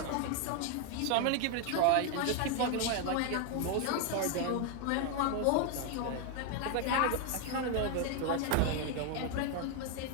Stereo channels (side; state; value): both; different; correlation 0.01